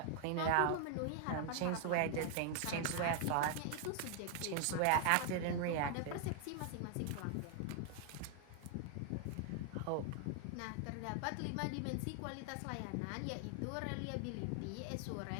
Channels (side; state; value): both; different; correlation 0.00